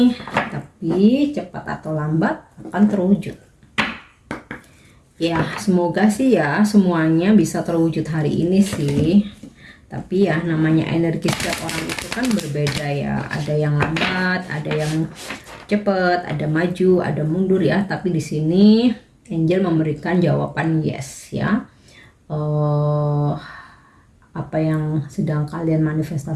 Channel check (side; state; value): both; identical; correlation 1.00